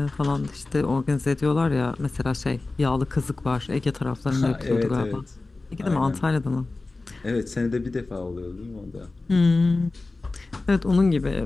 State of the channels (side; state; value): right; quieter; 3.4 dB